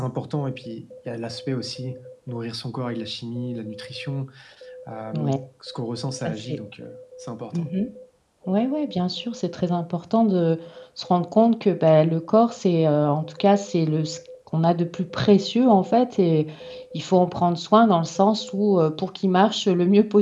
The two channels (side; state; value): both; identical; correlation 1.00